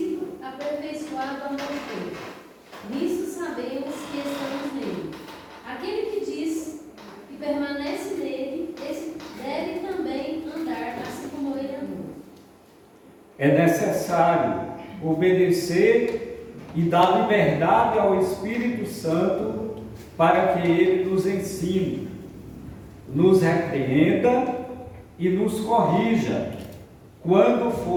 aperfeiçoado o amor dele. Nisso sabemos que estamos nele. Aquele que diz que permanece nele, esse deve também andar assim como ele andou. É necessário obedecer e dar liberdade ao Espírito Santo para que ele nos ensine, nos repreenda e nos corrija quando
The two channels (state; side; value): identical; both; correlation 1.00